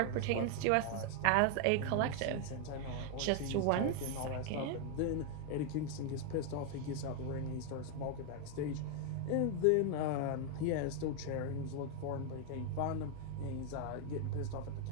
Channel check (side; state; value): both; different; correlation 0.00